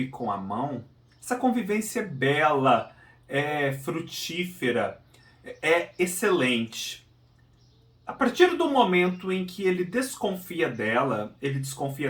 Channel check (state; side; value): identical; both; correlation 1.00